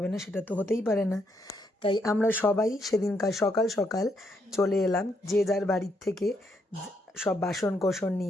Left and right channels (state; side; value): normal; both; correlation 0.76